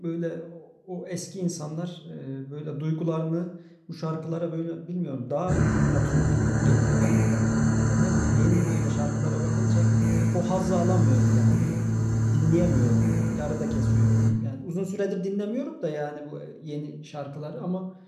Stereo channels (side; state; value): both; identical; correlation 1.00